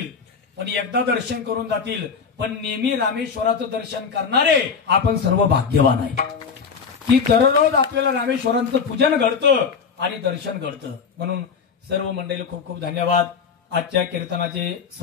पण एकदा दर्शन करून जातील पण नेहमी रामेश्वराचं दर्शन करणारे आपण सर्व भाग्यवान आहे की दररोज आपल्याला रामेश्वरांचं पूजन घडतं आणि दर्शन घडतं. म्हणून सर्व मंडळीला खूप खूप धन्यवाद. आजच्या कीर्तनाचे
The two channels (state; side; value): quieter; right; 6.0 dB